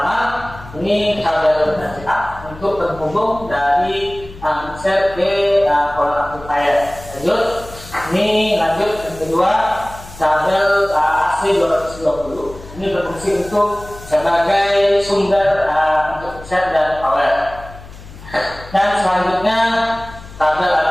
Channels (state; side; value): noise; left; hum, 17 dB below the sound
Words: ini kabel VCA untuk penghubung dari mixer ke power amplifier. Lanjut yang kedua, kabel AC 220. Ini berfungsi untuk sebagai sumber untuk mixer dan power. Dan selanjutnya kabel